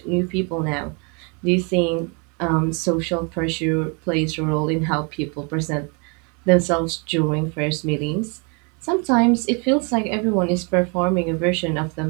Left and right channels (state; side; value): quieter; left; 34.0 dB